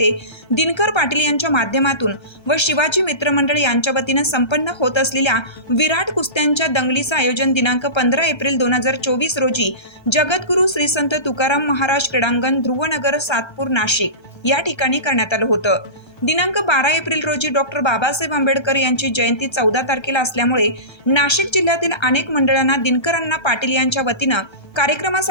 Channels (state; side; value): late; right; 1.3 ms